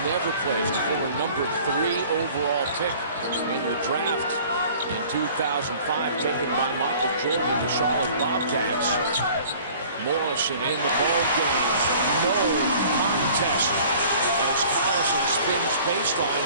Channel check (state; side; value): inverted; both; correlation -0.49